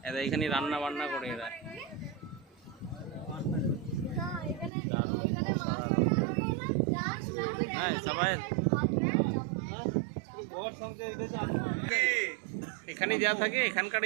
এরা এইখানেই রান্না বান্না করে এরা। হ্যাঁ সবাই এখানেই দেওয়া থাকে, এখানকার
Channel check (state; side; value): drops out; left; at 4.7 s